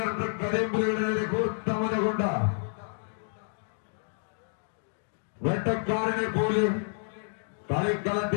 കരിമ്പുലിയുടെ നേരെ കൂർത്തമുന കൊണ്ട് വെട്ടക്കാരനെ പോലെ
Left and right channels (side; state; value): right; silent; digital silence